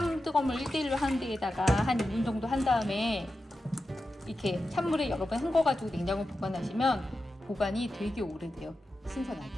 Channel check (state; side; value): normal; both; correlation 0.91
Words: 뜨거운 물 1대1로 하는 데에다가 한 2분 정도 한 다음에 이렇게 찬물에 여러 번 헹궈가지고 냉장고에 보관하시면 보관이 되게 오래돼요. 신선하게.